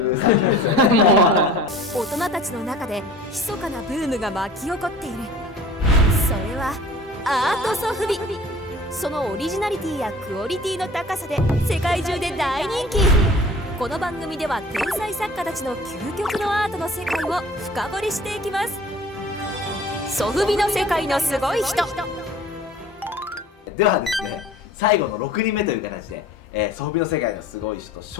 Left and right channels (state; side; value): normal; both; correlation 0.45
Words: う作品ですよね。大人たちの中で密かなブームが巻き起こっている。それはアートソフビ。そのオリジナリティやクオリティの高さで世界中で大人気。この番組では天才作家たちの究極のアートの世界を深掘りしていきます。ソフビの世界のすごい人。ではですね、最後の6人目という形で、ソフビの世界のすごい人シ